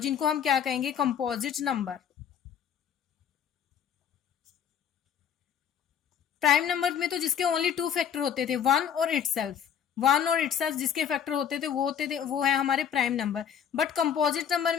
हम क्या कहेंगे, कंपोजिट नंबर। प्राइम नंबर में तो जिसके ओनली 2 फैक्टर होते थे, 1 और इटसेल्फ, 1 और इटसेल्फ जिसके फैक्टर होते थे वो है हमारे prime number. But composite number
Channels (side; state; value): right; quieter; 8.5 dB